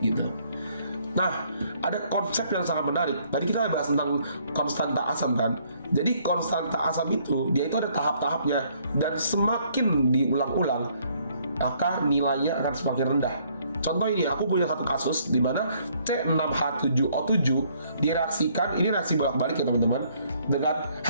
gitu. Nah, ada konsep yang sangat menarik. Tadi kita bahas tentang konstanta asam kan. Jadi konstanta asam itu, dia itu ada tahap-tahapnya, dan semakin diulang-ulang, maka nilainya akan semakin rendah. Contoh ini, aku punya satu kasus di mana C6H7O7 direaksikan, ini reaksi bolak-balik ya teman-teman, dengan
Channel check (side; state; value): both; inverted; correlation -0.66